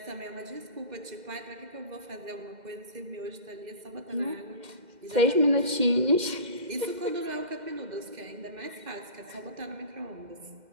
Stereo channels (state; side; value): late; left; 2.1 ms